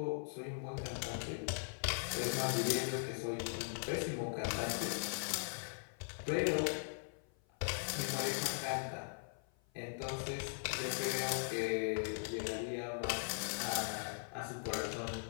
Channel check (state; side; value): silent; right; 51 dB below the other